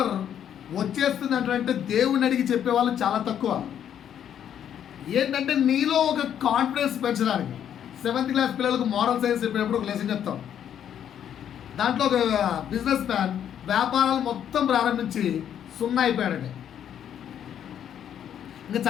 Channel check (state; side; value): quieter; right; 9.5 dB